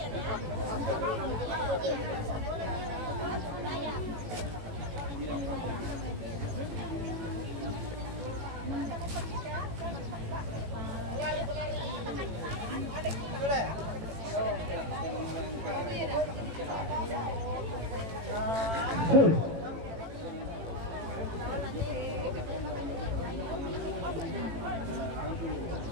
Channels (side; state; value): left; late; 18 ms